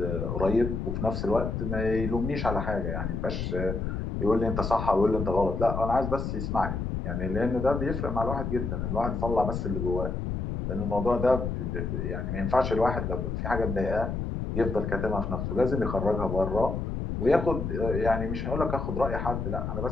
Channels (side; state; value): left; noise; rumble, 3 dB below the sound